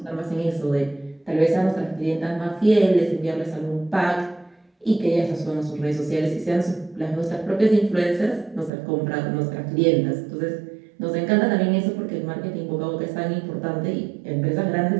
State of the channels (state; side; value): drops out; left; at 8.7 s